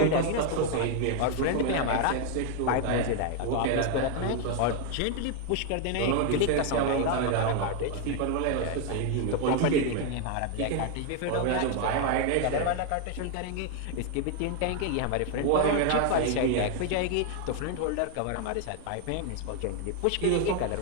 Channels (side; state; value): both; different; correlation 0.01